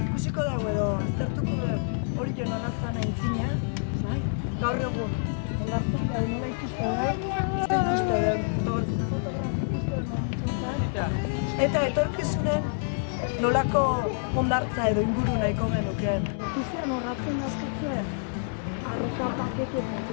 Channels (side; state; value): right; silent; 60 dB below the other